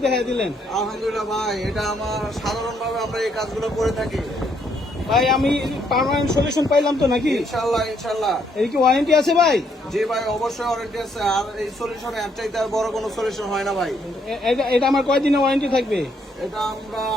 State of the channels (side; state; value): both; normal; correlation 0.72